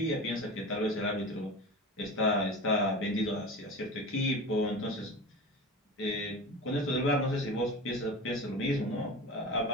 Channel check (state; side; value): normal; both; correlation 0.30